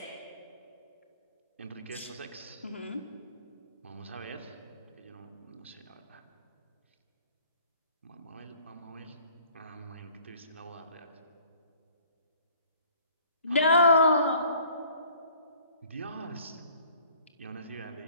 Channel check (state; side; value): inverted; both; correlation -0.55